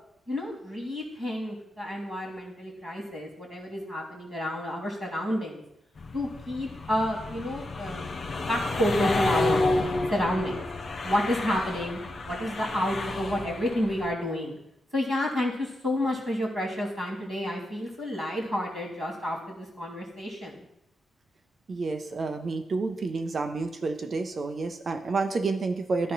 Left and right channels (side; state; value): both; normal; correlation 0.85